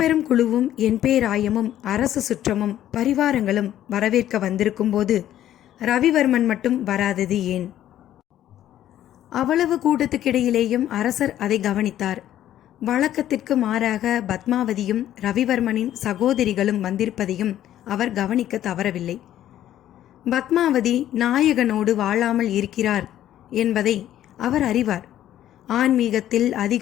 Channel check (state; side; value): quieter; right; 12.1 dB